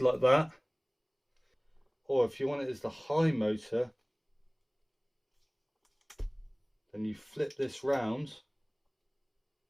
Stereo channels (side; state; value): both; identical; correlation 1.00